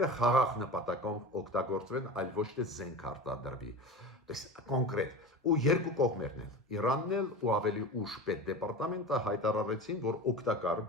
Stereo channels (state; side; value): normal; both; correlation 0.30